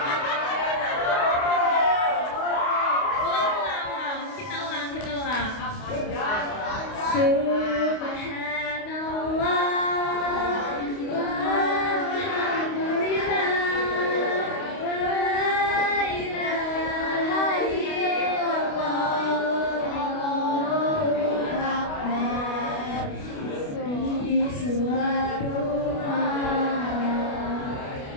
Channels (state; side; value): late; right; 29 ms